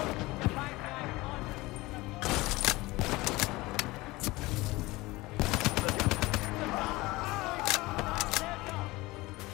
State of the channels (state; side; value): quieter; right; 20.9 dB